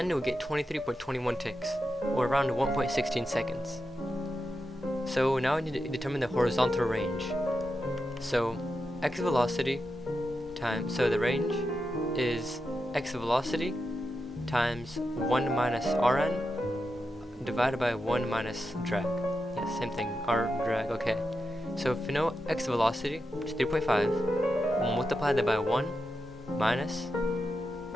we get 23.21 ticks, or around 1.16 seconds. So now we need to determine the horizontal range. So x velocity times, so the range is x velocity times 1 minus rn divided by 1 minus drag. Yeah, same thing, r drag, okay. So if you know x velocity, which is 3.5, we'll multiply that by 1 minus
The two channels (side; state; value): both; normal; correlation 0.88